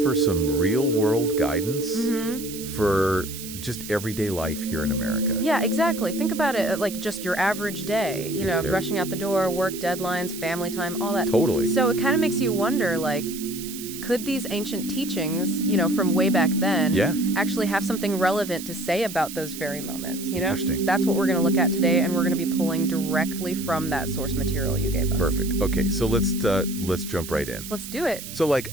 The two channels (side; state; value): right; noise; hiss, 11 dB below the sound